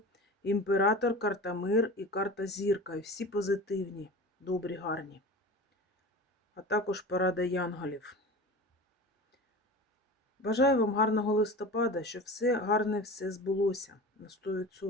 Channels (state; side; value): normal; both; correlation 0.34